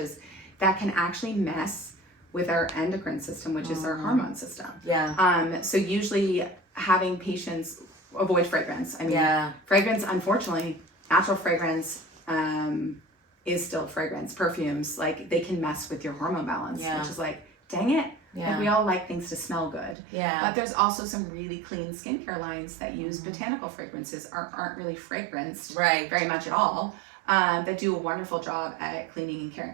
that can actually mess with our endocrine system, which is our hormone system. Yeah. So usually having patients avoid fragrance. I mean, fragrance, unfortunately, natural fragrance is still fragrance. Perfumes, like, they can mess with your hormone balance, which is like, dang it. Like, we all like things to smell good. But there's also some really clean skincare lines that use botanical fragrances, aren't really fragranced very much at all, that do a wonderful job at cleaning and caring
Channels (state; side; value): drops out; left; at 20.0 s